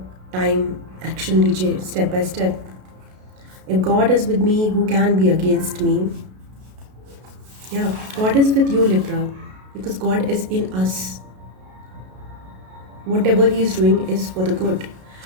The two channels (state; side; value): late; left; 32 ms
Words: time action लीजिए, step by step. If God is with me, who can be against me? Yeah, God is with you, Libra, because God is in us. Whatever He is doing is for the good.